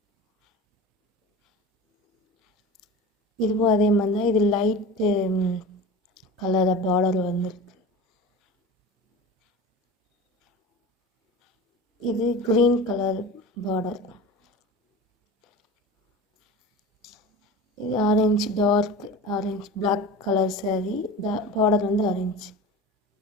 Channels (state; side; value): normal; both; correlation 0.33